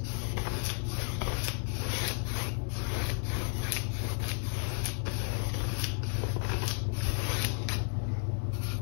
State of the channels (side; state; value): right; silent; 56 dB below the other